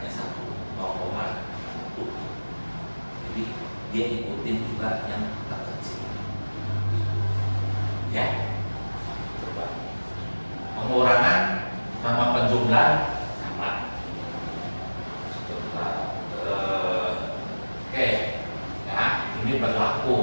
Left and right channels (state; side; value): inverted; both; correlation -1.00